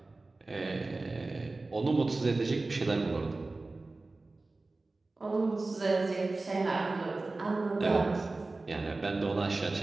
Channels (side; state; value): left; quieter; 3.3 dB